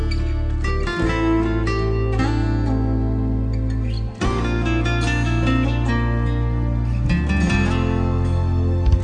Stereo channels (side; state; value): both; identical; correlation 1.00